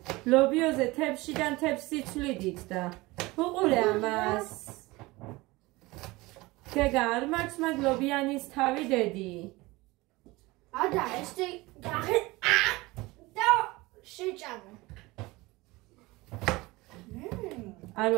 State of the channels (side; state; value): left; quieter; 21.6 dB